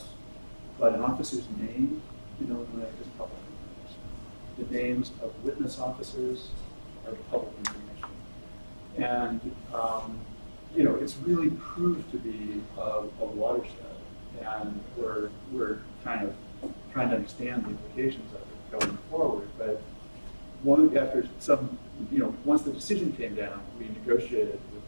but an officer's name in Illinois is public information. The names of witness officers are public information. And it's really proved to be a watershed, and we're kind of trying to understand the implications of it going forward. But after some, once the decision came down, we negotiated with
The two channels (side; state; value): both; inverted; correlation -1.00